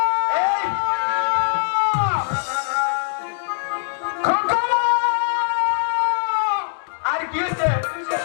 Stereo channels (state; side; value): silent; right; digital silence